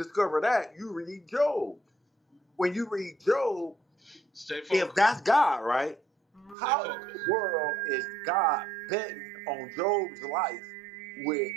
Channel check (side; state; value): left; drops out; at 6.6 s